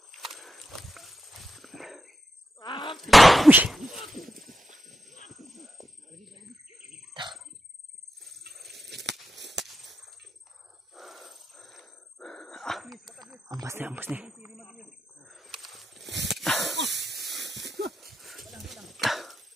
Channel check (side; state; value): both; normal; correlation 0.87